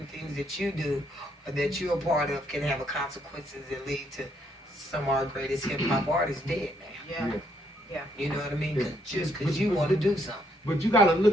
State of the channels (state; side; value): normal; both; correlation 0.72